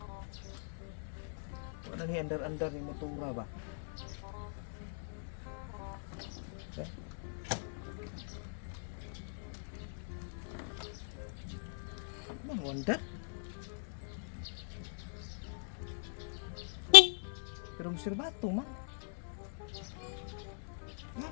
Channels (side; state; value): right; silent; digital silence